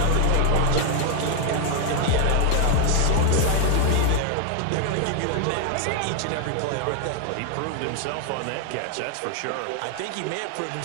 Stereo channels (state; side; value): different; both; correlation 0.00